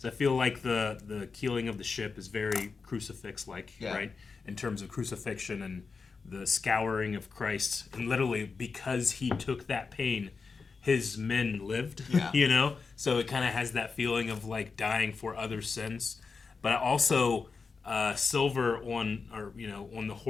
I feel like the keeling of the ship is very crucifix-like, right? In terms of crucifixion and the scouring of Christ, and literally because he took that pain, his men lived. You know, so it kind of has that feeling of like dying for other sins. But also, Silver on the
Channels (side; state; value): right; quieter; 4.8 dB